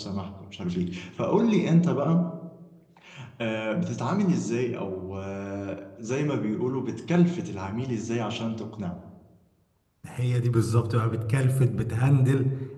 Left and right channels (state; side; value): identical; both; correlation 1.00